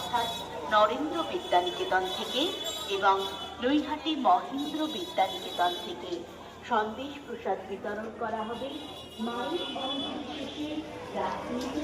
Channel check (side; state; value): both; identical; correlation 1.00